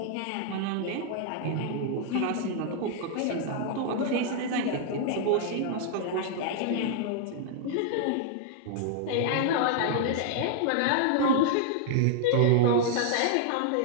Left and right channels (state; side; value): different; both; correlation -0.01